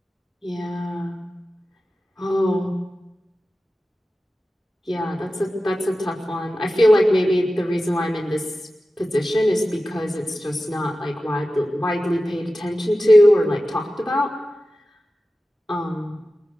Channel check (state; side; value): normal; both; correlation 0.94